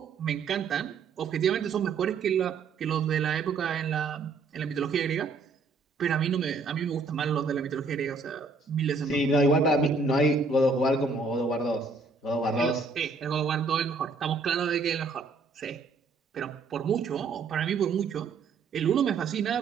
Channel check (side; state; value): left; quieter; 4.3 dB